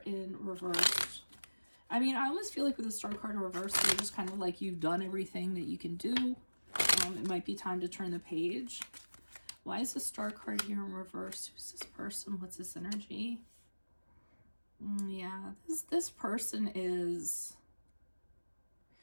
in reverse? I mean, I almost feel like with the Star card in reverse, they're just kind of like you've done everything that you can do. It might be time to turn the page. Why is the Star card here in reverse? Who's this person? What's this energy? Yeah, this person is...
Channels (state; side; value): inverted; both; correlation -1.00